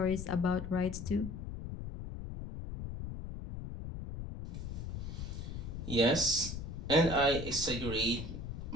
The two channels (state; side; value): noise; left; rumble, 6 dB below the sound